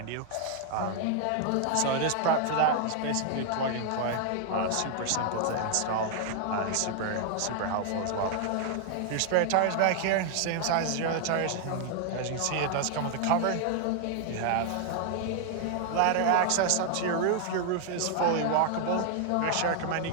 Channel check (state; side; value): different; both; correlation 0.00